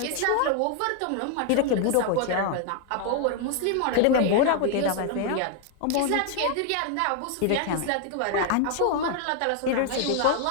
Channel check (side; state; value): both; different; correlation 0.00